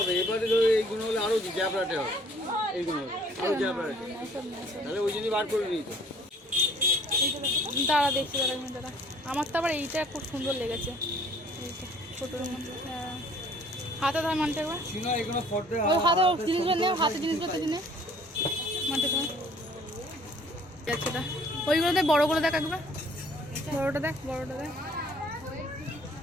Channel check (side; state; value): both; normal; correlation 0.56